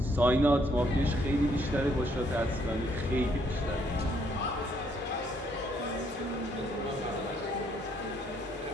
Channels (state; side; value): normal; both; correlation 0.69